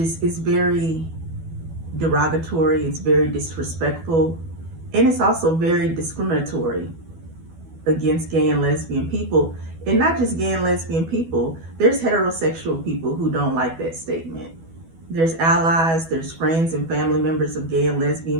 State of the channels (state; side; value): late; left; 12 ms